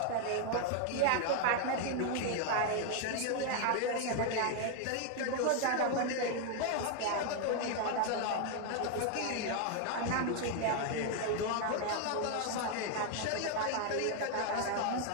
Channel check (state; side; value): different; both; correlation 0.00